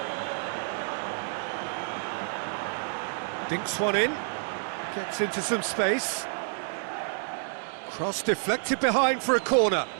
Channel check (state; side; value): silent; left; digital silence